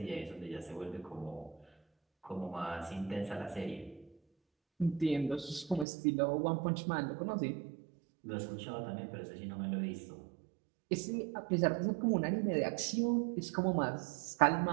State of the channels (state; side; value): drops out; left; at 5.9 s